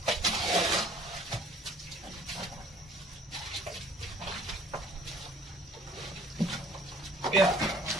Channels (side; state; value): both; normal; correlation 0.54